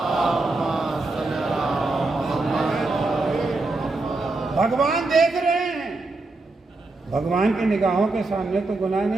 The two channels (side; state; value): left; quieter; 3.3 dB